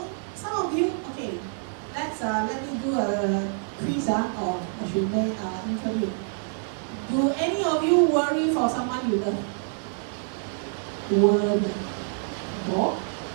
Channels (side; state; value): left; silent; 57 dB below the other